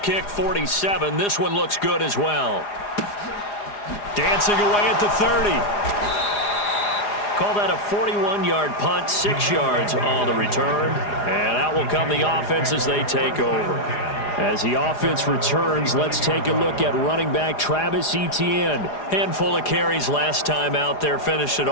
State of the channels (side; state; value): right; late; 4.9 ms